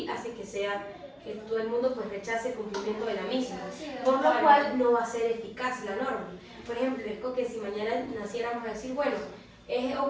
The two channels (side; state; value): both; identical; correlation 1.00